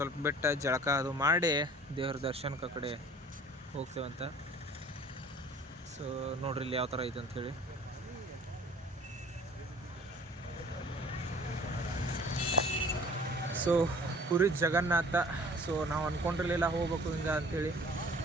ಬೆಟ್ಟ ಜಳಕ ಅದು ಮಾಡಿ ದೇವ್ರ ದರ್ಶನಕ್ಕೆ ಆ ಕಡೆ ಹೋಗ್ತೇವಂತ. ಸೊ ನೋಡ್ರಿ ಇಲ್ಲಿ ಯಾವ ಥರ ಐತೆ ಅಂಥೇಳಿ. ಸೊ ಪುರಿ ಜಗನ್ನಾಥ. ಸೊ ನಾವು ಅಂದ್ಕೊಂಡಿರಲಿಲ್ಲ ಹೋಗ್ಬೇಕು ಹಿಂಗೆ ಅಂಥೇಳಿ.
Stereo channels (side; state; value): both; normal; correlation 0.49